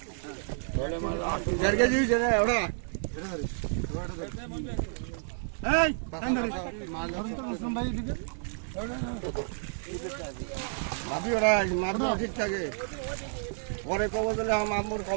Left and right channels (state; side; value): silent; left; digital silence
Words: 4 কেজি হয়েছে না ওটা এই মাছ ধরুন তো মুসলিম ভাই দিকে মাটি ওরা মাছ ঠিক থাকে পরে কবে দিলে আমার